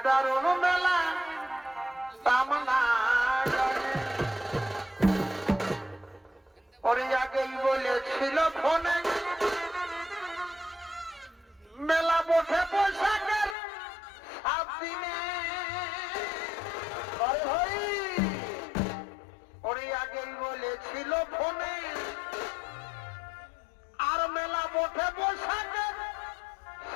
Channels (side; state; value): right; drops out; at 13.6 s